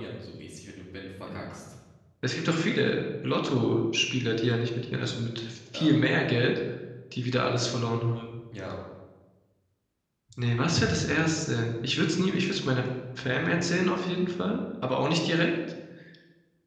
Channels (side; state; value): both; identical; correlation 1.00